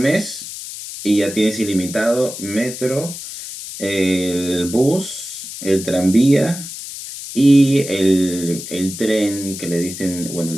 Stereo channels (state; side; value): noise; left; hiss, 10 dB below the sound